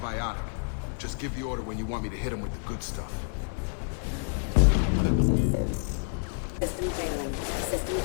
Just give the order when you want me to hit them with the good stuff. System failing. System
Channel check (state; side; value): silent; right; 59 dB below the other